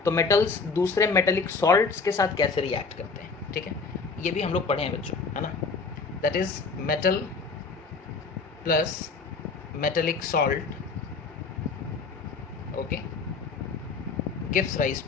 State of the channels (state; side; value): quieter; right; 4.5 dB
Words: तो मेटल्स दूसरे मेटेलिक सॉल्ट्स के साथ कैसे रिएक्ट करते हैं, ठीक है, ये भी हम लोग पढ़े हैं बच्चों, है ना। That is metal plus metallic salt, okay, gives rise